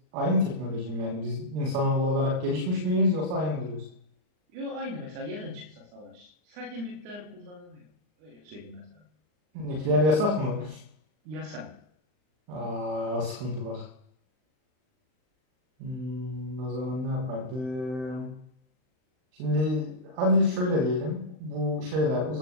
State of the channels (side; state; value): left; late; 39 ms